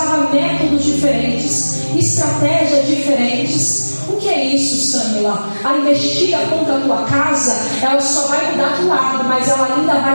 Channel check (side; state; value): both; inverted; correlation -1.00